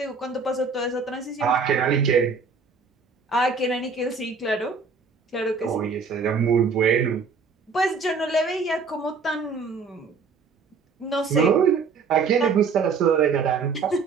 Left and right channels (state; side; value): quieter; left; 4.9 dB